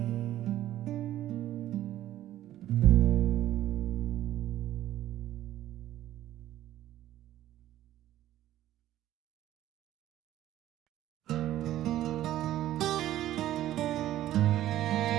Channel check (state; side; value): quieter; left; 13.4 dB